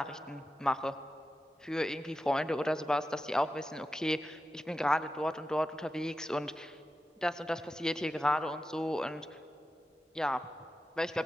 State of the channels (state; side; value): normal; both; correlation 0.91